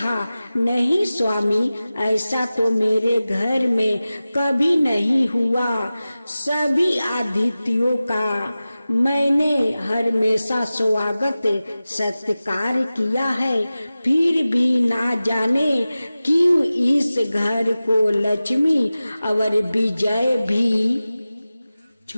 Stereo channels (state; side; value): inverted; both; correlation -0.96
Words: नहीं स्वामी, ऐसा तो मेरे घर में कभी नहीं हुआ। सभी अतिथियों का मैंने हमेशा स्वागत सत्कार किया है, फिर भी ना जाने क्यों इस घर को लक्ष्मी और विजय भी